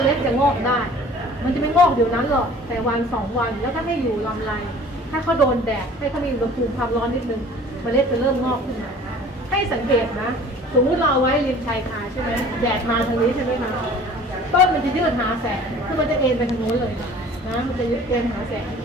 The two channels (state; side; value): normal; both; correlation 0.48